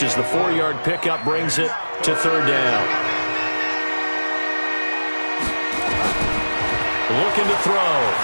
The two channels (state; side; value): inverted; both; correlation -1.00